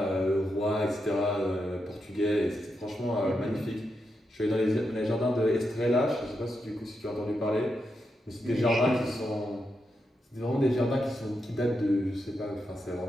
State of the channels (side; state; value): both; normal; correlation 0.85